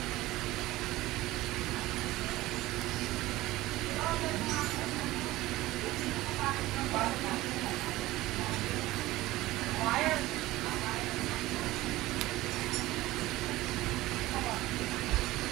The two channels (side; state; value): left; quieter; 17.7 dB